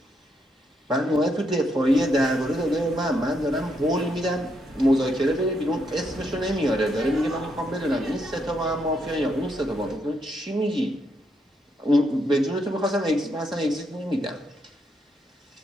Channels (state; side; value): normal; both; correlation 0.77